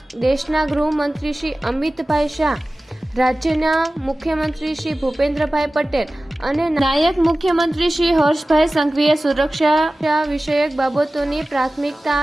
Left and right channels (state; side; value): normal; both; correlation 0.97